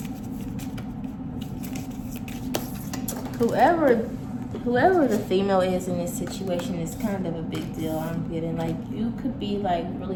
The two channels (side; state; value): both; identical; correlation 1.00